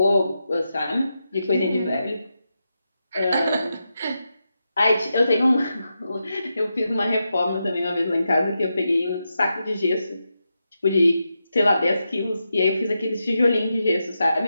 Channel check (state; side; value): inverted; both; correlation -0.87